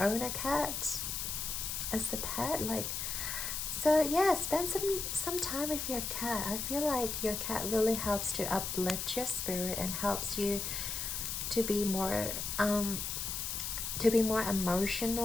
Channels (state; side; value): noise; left; hiss, 3 dB below the sound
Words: a cat as a pet. Like, so yeah, spend some time with your cat. I feel like your cat really helps to uplift your spirit and helps you to be more